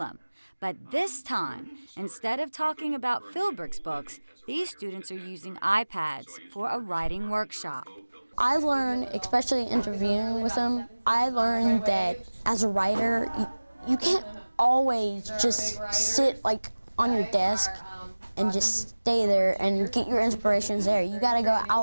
But this time, instead of talking about Philbrick's books, these students are using iPads for a writing workshop. I learned, especially interviewing with him, I learned that as a writer, you can't always just sit like on your desk and just stay there and get your inspirations there. You gotta go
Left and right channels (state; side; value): inverted; both; correlation -1.00